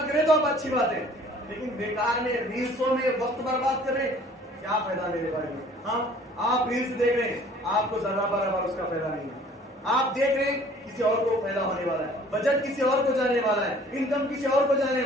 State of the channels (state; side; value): normal; both; correlation 0.53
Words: کریں تو آپ اچھی بات ہے، لیکن بیکار میں ریلسوں میں وقت برباد کر رہے کیا فائدہ میرے بارے میں. آپ ریلس دیکھ رہے ہیں، آپ کو ذرہ برابر اس کا فائدہ نہیں ہے. آپ دیکھ رہے ہیں کسی اور کو فائدہ ہونے والا ہے، بجٹ کسی اور کو جانے والا ہے، انکم کسی اور کو جانے